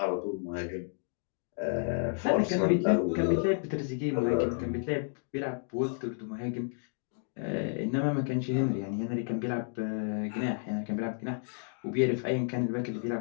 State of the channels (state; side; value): silent; right; digital silence